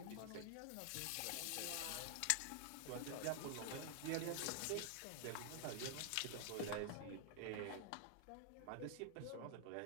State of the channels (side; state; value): both; different; correlation 0.00